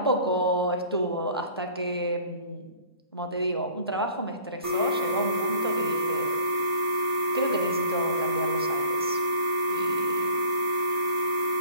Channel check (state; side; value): inverted; both; correlation -0.48